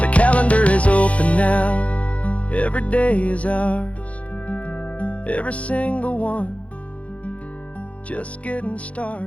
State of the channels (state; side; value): late; right; 0.064 ms